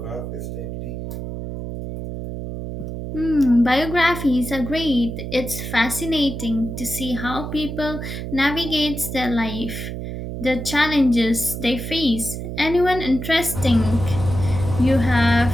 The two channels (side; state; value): right; noise; hum, 7 dB below the sound